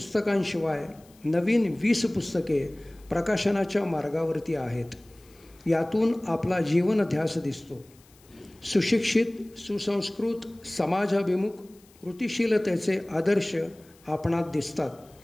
नवीन 20 पुस्तके प्रकाशनाच्या मार्गावरती आहेत. यातून आपला जीवनध्यास दिसतो. सुशिक्षित, सुसंस्कृत, समाजाभिमुख कृतिशीलतेचे आदर्श आपणात दिसतात.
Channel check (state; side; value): noise; left; hiss, 29 dB below the sound